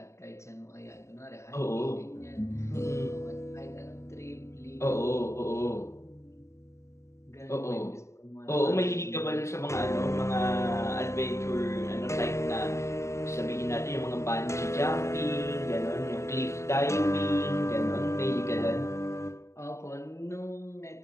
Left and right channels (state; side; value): late; right; 0.14 ms